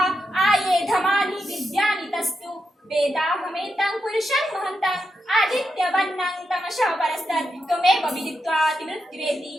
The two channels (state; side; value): normal; both; correlation 0.86